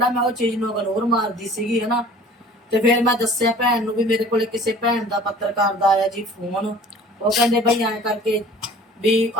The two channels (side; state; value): both; normal; correlation 0.47